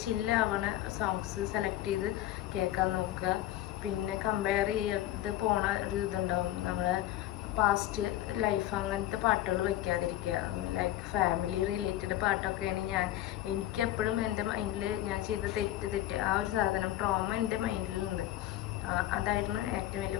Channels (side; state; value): right; quieter; 13.9 dB